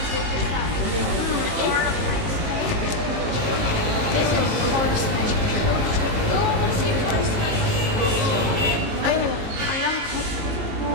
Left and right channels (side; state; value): left; late; 19 ms